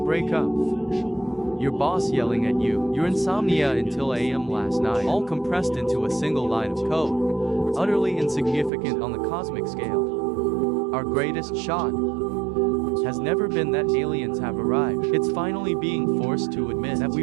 Your boss yelling at you. Your insomnia until AM last night. All compressed into a single line of code. Utterly insignificant on the cosmic scale. Our greatest shot has never been that aliens have arrived. It's finally being forced to admit that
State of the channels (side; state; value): left; drops out; at 8.7 s